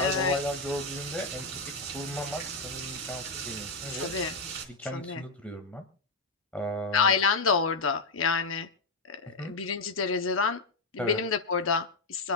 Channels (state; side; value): quieter; right; 3.5 dB